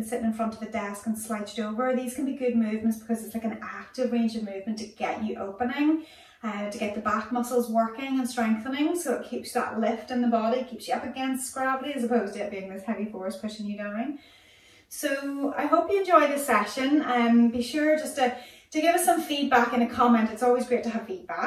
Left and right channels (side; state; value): both; identical; correlation 1.00